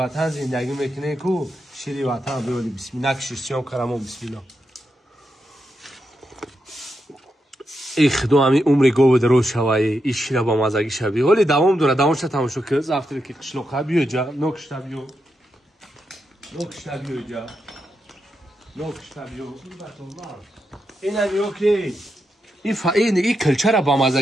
زندگی میکنه کو شیری وطن بیولی بسم الله نکشیستیم کرمو بسم الله ای خدا همی عمری گو در روز شوایی ای شیره با مزگی شوی ولی دوام داره دوامش تماشا که زفتری که قشلوقه بیو جا نکشتا بیو جا نکشتا بیو این همی اوکی این کلچر با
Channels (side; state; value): both; normal; correlation 0.85